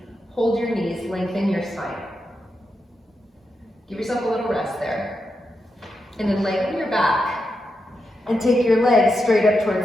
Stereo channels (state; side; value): normal; both; correlation 0.86